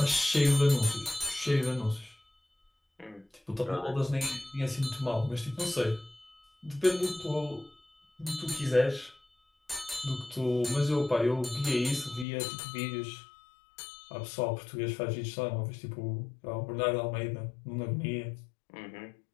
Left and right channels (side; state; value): right; drops out; at 12.2 s